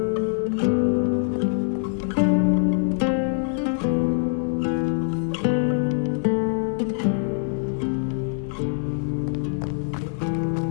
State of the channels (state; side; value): silent; right; 61 dB below the other